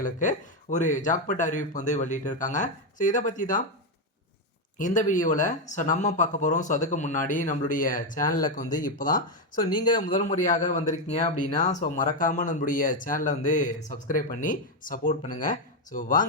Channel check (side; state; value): both; normal; correlation 0.06